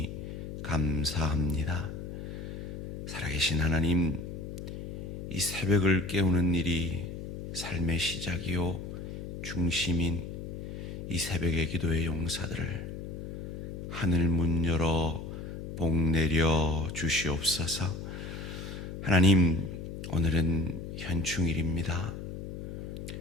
감사합니다. 살아계신 하나님, 이 새벽을 깨우는 일이 삶의 시작이요 중심인 이 새벽의 기도의 용사들을 하늘 문 열어 복 내려 주시옵소서. 하나님, 오늘은 현충일입니다.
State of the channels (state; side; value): noise; left; hum, 8 dB below the sound